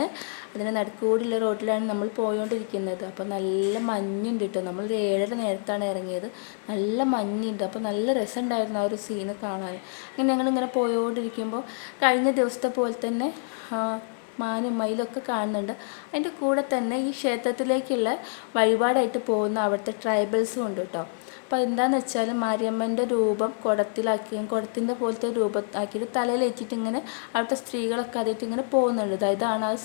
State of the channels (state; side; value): silent; right; 60 dB below the other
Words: അതിന് നടുക്കൂടിയുള്ള റോട്ടിലാണ് നമ്മൾ പോയോണ്ടിരിക്കുന്നത്. അപ്പോൾ നല്ല മഞ്ഞുണ്ട് കേട്ടോ. നമ്മൾ 7:30 നേരത്താണ് ഇറങ്ങിയത്. നല്ല മഞ്ഞുണ്ട്. അപ്പോൾ നല്ല രസമുണ്ടായിരുന്നു ആ ഒരു സീന് കാണാൻ. ഇങ്ങനെ ഞങ്ങളിങ്ങനെ പോയോണ്ടിരിക്കുമ്പോൾ കഴിഞ്ഞ ദിവസത്തെ പോലെ തന്നെ മാനും മയിലൊക്കെ കാണുന്നുണ്ട്. അതിൻ്റെ കൂടെ തന്നെ ഈ ക്ഷേത്രത്തിലേക്കുള്ള വഴിപാടായിട്ട് പോകുന്ന അവിടുത്തെ ട്രൈബൽസും ഉണ്ട് കേട്ടോ. അപ്പോൾ എന്താണെന്ന് വെച്ചാൽ മാരിയമ്മൻ്റെ രൂപം കുടത്തിൻ്റെ പോലത്തെ രൂപം ആക്കിയിട്ട് തലയിൽ വെച്ചിട്ട് ഇങ്ങനെ അവിടുത്തെ സ്ത്രീകളൊക്കെ അതിട്ട് ഇങ്ങനെ പോകുന്നുണ്ട്. ഇതാണ് ആ